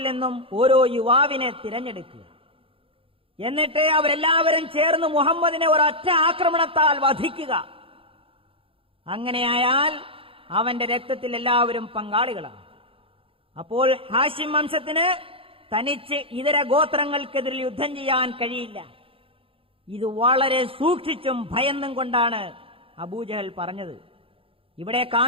നിന്നും ഓരോ യുവാവിനെ തിരഞ്ഞെടുക്കുക, എന്നിട്ട് അവരെല്ലാവരും ചേർന്ന് മുഹമ്മദിനെ ഒരൊറ്റ ആക്രമണത്താൽ വധിക്കുക. അങ്ങനെയായാൽ അവന്റെ രക്തത്തിൽ എല്ലാവരും പങ്കാളികളാണ്. അപ്പോൾ ഹാഷിം വംശത്തിന് തനിച്ച് ഇതര ഗോത്രങ്ങൾക്കെതിരെ യുദ്ധം ചെയ്യാൻ കഴിയില്ല. ഇത് വളരെ സൂക്ഷിച്ചും ഭയന്നും കൊണ്ടാണ് അബൂജഹൽ പറഞ്ഞത്. ഇവിടെ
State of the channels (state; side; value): late; left; 0.27 ms